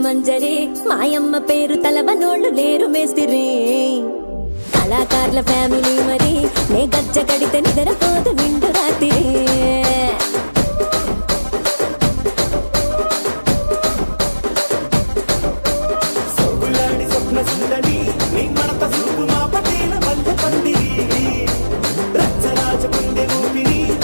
మాయమ్మ పేరు తలవనోళ్ళు లేరు మేస్తిరి కళాకారుల ఫ్యామిలీ మరి నే గజ్జ కడితే నిద్ర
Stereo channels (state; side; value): inverted; both; correlation -1.00